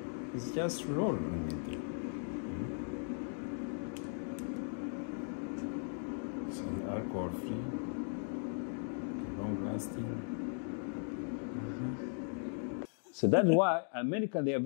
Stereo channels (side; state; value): right; silent; 53 dB below the other